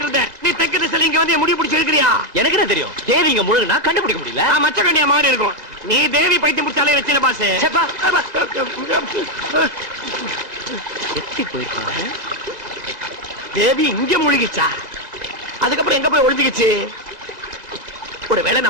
இருந்தேன், நீ தெற்கு திசையில இங்க வந்து என் முடி பிடிச்சி இருக்கிறியா? எனக்கு என்ன தெரியும்? தேவி இங்க முழுகுனா கண்டுபிடிக்க முடியல. நான் மச்ச கண்ணியா மாதிரி இருக்கும். நீ தேவி பைத்தியம் பிடிச்சாலே வச்சில பாஸ். சேப்பா எத்தி போயிருக்காங்க. தேவி இங்க முழுகிச்சா? அதுக்கப்புறம் எங்க போய் ஒளிஞ்சுக்கிச்சு? ஒருவேளை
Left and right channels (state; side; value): late; left; 1.9 ms